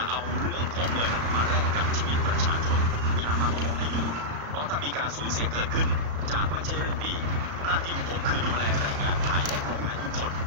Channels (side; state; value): left; late; 35 ms